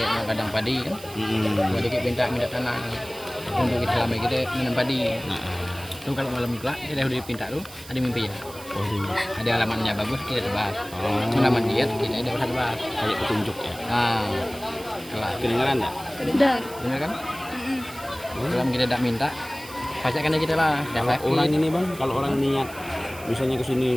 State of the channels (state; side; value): noise; right; hiss, 17 dB below the sound